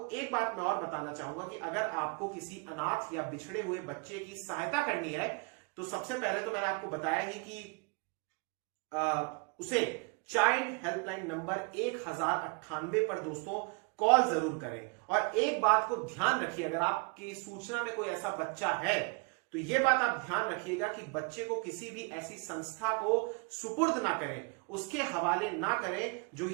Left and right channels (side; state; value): left; quieter; 31.7 dB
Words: एक बात मैं और बताना चाहूंगा कि अगर आपको किसी अनाथ या बिछड़े हुए बच्चे की सहायता करनी है तो सबसे पहले तो मैंने आपको बताया ही कि उसे चाइल्ड हेल्पलाइन नंबर 1098 पर दोस्तों कॉल जरूर करें। और एक बात को ध्यान रखिए, अगर आपकी सूचना में कोई ऐसा बच्चा है तो यह बात आप ध्यान रखिएगा कि बच्चे को किसी भी ऐसी संस्था को सुपुर्द ना करें, उसके हवाले ना करें जो